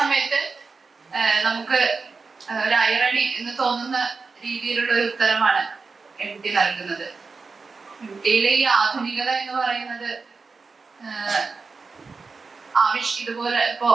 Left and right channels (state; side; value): quieter; left; 4.5 dB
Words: നമുക്ക് ഒരു ഐറണി എന്ന് തോന്നുന്ന രീതിയിലുള്ള ഒരു ഉത്തരമാണ് MT നൽകുന്നത്. MTയിലെ ഈ ആധുനികത എന്ന് പറയുന്നത് ഇതുപോലെ ഇപ്പോ